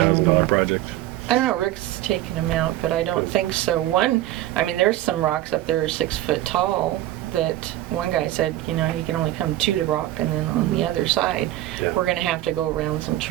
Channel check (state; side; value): quieter; left; 14.7 dB